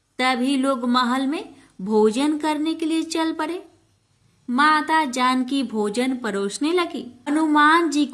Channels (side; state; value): both; identical; correlation 1.00